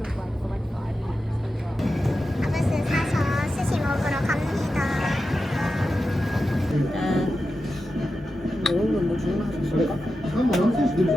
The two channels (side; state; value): both; normal; correlation 0.91